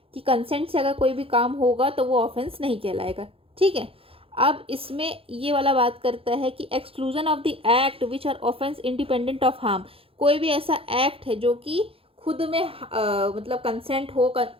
कि कंसेंट से अगर कोई भी काम होगा तो वो ऑफेंस नहीं कहलाएगा, ठीक है। अब इसमें ये वाला बात करता है कि exclusion of the act which are offence independent of harm. कोई भी ऐसा एक्ट है जो कि खुद में मतलब कंसेंट हो,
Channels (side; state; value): left; late; 0.27 ms